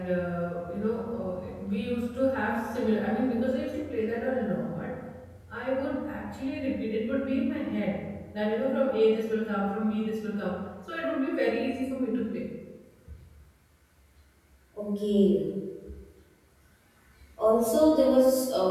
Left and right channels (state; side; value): identical; both; correlation 1.00